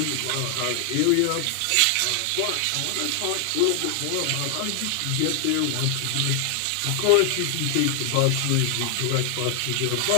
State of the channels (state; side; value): different; both; correlation 0.00